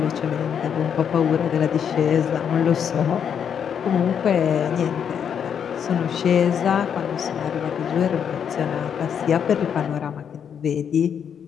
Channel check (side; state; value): right; quieter; 7.9 dB